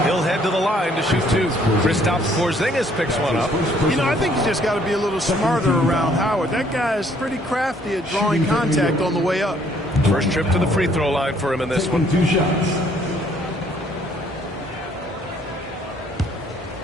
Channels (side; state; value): both; normal; correlation 0.63